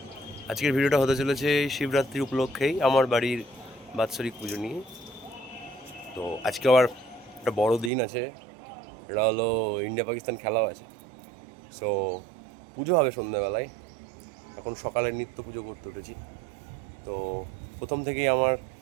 আজকের ভিডিওটা হতে চলেছে শিবরাত্রি উপলক্ষেই আমার বাড়ির বাৎসরিক পুজো নিয়ে। তো আজকে আবার একটা বড় দিন আছে, এটা হলো ইন্ডিয়া পাকিস্তান খেলাও আছে। সো পুজো হবে সন্ধ্যাবেলায়, এখন সকালের নিত্য পুজো করতে উঠেছি। তো প্রথম থেকেই আমার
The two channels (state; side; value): drops out; left; at 7.9 s